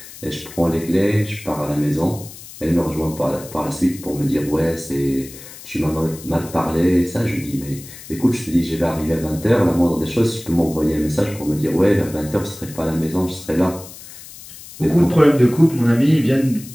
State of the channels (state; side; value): noise; left; hiss, 16 dB below the sound